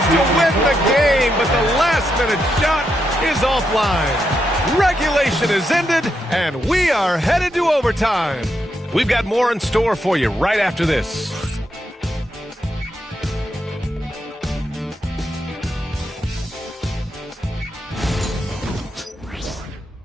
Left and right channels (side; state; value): both; normal; correlation 0.82